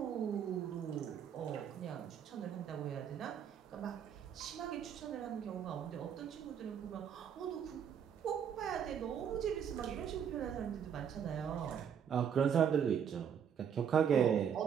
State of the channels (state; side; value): quieter; left; 8.1 dB